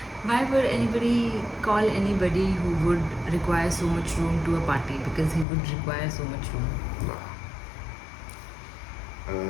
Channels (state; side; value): drops out; right; at 5.5 s